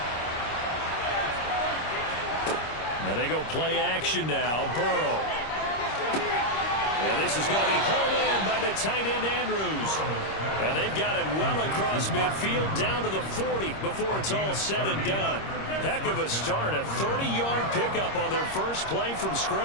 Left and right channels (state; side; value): late; right; 26 ms